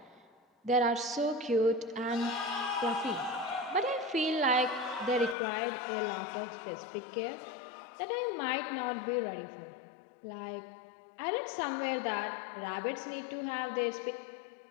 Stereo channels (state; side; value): drops out; right; at 5.4 s